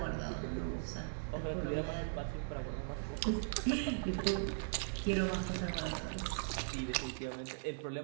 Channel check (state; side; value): silent; left; 52 dB below the other